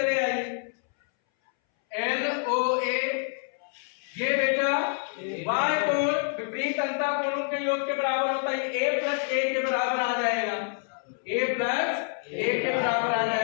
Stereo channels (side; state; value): right; silent; 60 dB below the other